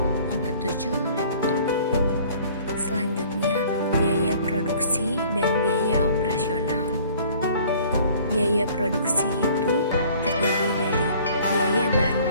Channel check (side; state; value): both; inverted; correlation -0.53